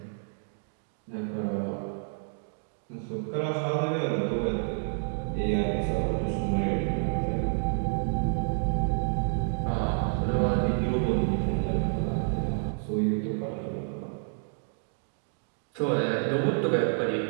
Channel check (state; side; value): silent; left; digital silence